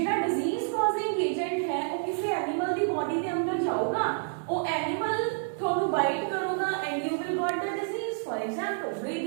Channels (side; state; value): left; silent; digital silence